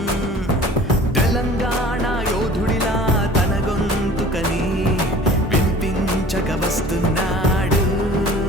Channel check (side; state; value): both; normal; correlation 0.46